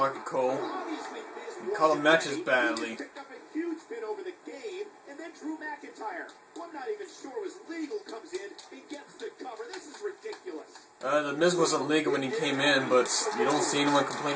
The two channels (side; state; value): both; identical; correlation 1.00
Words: Cole. Obviously, Miz You call won him the matches game. badly. He picked up a huge pin over the game, and then Drew McIntyre, who I'm not even sure was legal, comes in and gets the cover. This is ridiculous. The Miz wasn't legal when he came in, but you don't see anyone